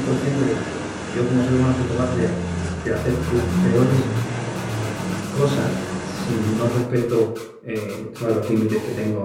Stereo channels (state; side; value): identical; both; correlation 1.00